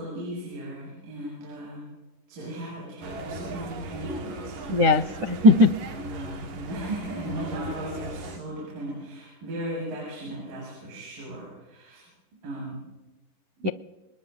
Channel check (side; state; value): left; late; 10 ms